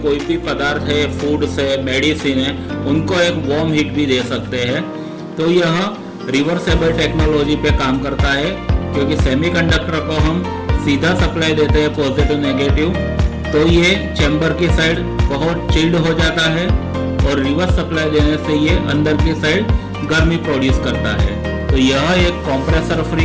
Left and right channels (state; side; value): identical; both; correlation 1.00